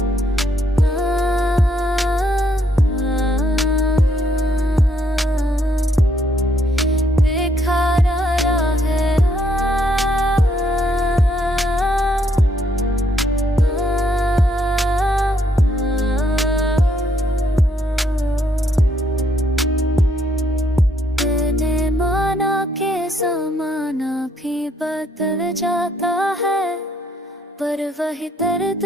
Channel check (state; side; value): normal; both; correlation 0.71